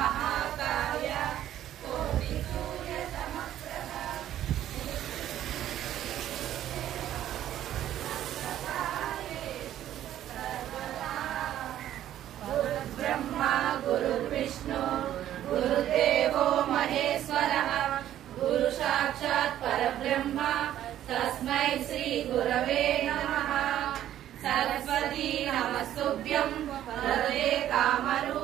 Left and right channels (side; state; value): left; quieter; 12.0 dB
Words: कोटिसूर्यसमप्रभा गुरुर्ब्रह्मा गुरुर्विष्णु गुरुदेवो महेश्वरः गुरु साक्षात् परब्रह्म तस्मै श्री गुरवे नमः। सरस्वती नमस्तुभ्यं वरदे